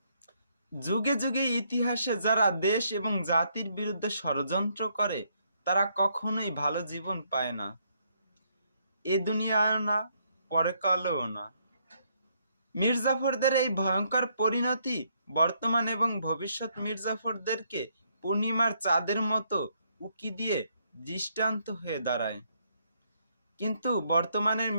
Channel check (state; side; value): inverted; both; correlation -0.72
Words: যুগে যুগে ইতিহাসে যারা দেশ এবং জাতির বিরুদ্ধে ষড়যন্ত্র করে, তারা কখনোই ভালো জীবন পায় না, এ দুনিয়ায়ও না, পরকালেও না। মির্জাফরদের এই ভয়ঙ্কর পরিণতি বর্তমান এবং ভবিষ্যৎ মির্জাফরদেরকে পূর্ণিমার চাঁদের মতো উকি দিয়ে দৃষ্টান্ত হয়ে দাঁড়ায়। কিন্তু বর্তমানের